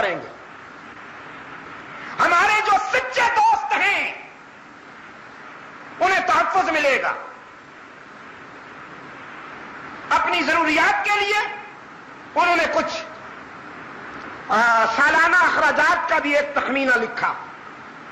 گے۔ ہمارے جو سچے دوست ہیں انہیں تحفظ ملے گا، اپنی ضروریات کے لیے انہوں نے کچھ سالانہ اخراجات کا بھی ایک تخمینہ لکھا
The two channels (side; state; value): both; identical; correlation 1.00